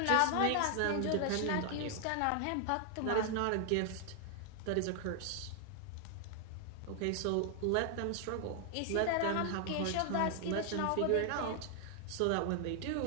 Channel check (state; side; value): different; both; correlation 0.00